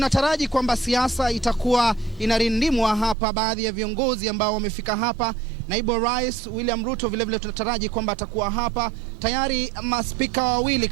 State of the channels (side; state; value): left; drops out; at 3.2 s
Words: kwamba siasa itakuwa inarindimwa hapa. Baadhi ya viongozi ambao wamefika hapa, naibu rais William Ruto vile tunataraji kwamba atakuwa hapa. Tayari maspika wawili